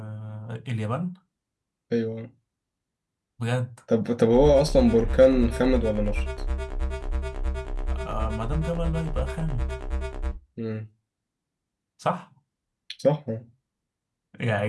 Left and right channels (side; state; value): both; identical; correlation 1.00